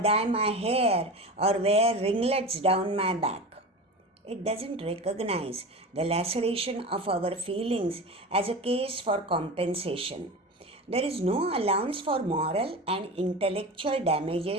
my hair or wear ringlets down my back. It doesn't recognize the laceration of our feelings as a case for compensation. There is no allowance for moral and intellectual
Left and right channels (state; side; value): normal; both; correlation 0.29